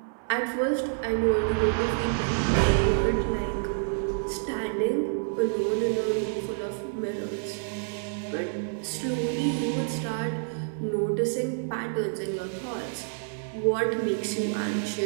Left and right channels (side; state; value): left; silent; 59 dB below the other